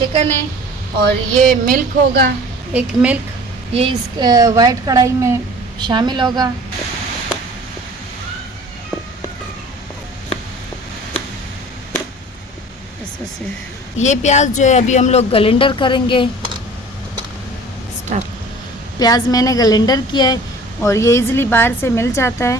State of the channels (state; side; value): normal; both; correlation 0.45